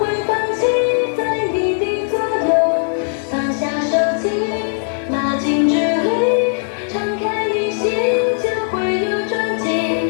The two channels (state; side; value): silent; right; 67 dB below the other